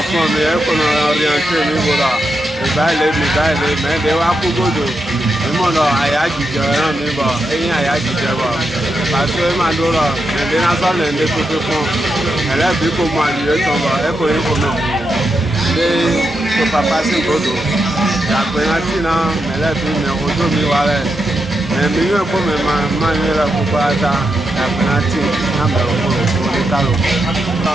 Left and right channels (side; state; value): both; normal; correlation 0.85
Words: fún mi ẹkọ̀rọ̀ ọ̀rìyànṣẹ́ mi wòrà ìbáyìí mẹ́ẹ̀ẹ́dẹ́ wá kú gbòdò ìmọ̀nà àyájíjẹ ẹran mi bọ̀ ẹ̀yìn àyájíjẹ bọ̀ pàṣẹ máa dúró ẹ̀dẹ́ náà ẹ̀dẹ́ tuntun fún ẹlẹ́bí kò mọ àdìyẹ tán bọ̀ ẹkọ̀ yìí kò mọ̀ ẹ̀dẹ́ tọ̀pàpá sí gbòdò ìyàgbẹ́yàtì náà ẹlẹ́bí mi ojú mi wà rẹ̀ mi yóò kó mi máa ń yẹra gbogbo ata ìyàgbẹ́yàtì náà bẹ̀rẹ̀ fún òní kálò.